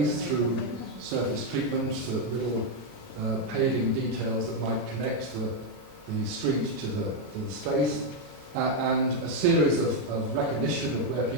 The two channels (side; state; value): both; normal; correlation 0.02